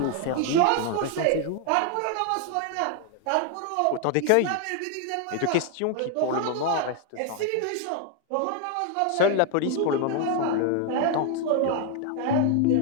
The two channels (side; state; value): both; different; correlation 0.01